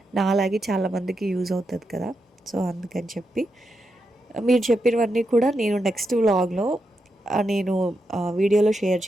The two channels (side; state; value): both; normal; correlation 0.85